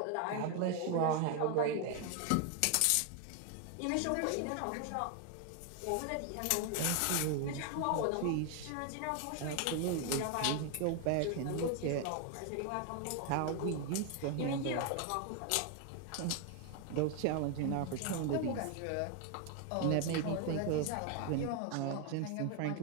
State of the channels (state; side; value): different; both; correlation 0.01